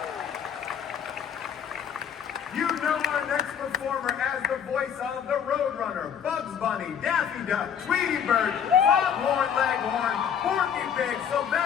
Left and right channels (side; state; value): right; quieter; 8.0 dB